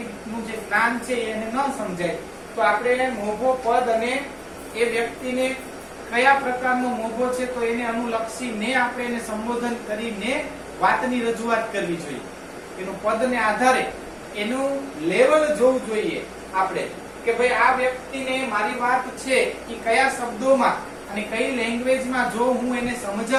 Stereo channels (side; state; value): both; identical; correlation 1.00